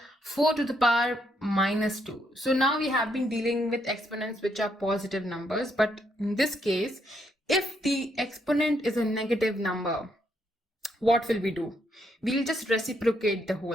4 to the power minus 2. So now we have been dealing with exponents which are positive numbers, but in this case, if the exponent is a negative number, what will we do? We'll just reciprocate the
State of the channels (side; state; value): both; normal; correlation 0.75